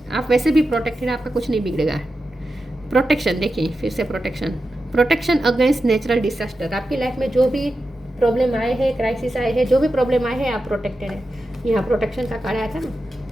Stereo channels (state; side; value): normal; both; correlation 0.90